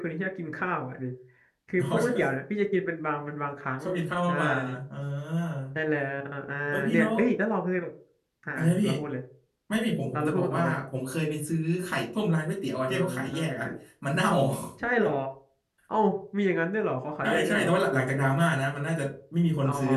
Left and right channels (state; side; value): identical; both; correlation 1.00